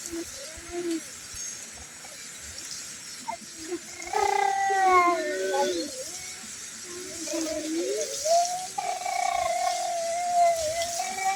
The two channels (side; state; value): both; identical; correlation 1.00